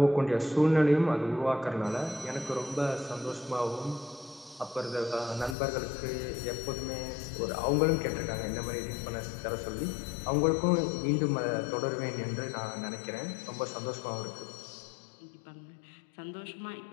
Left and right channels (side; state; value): right; drops out; at 5.6 s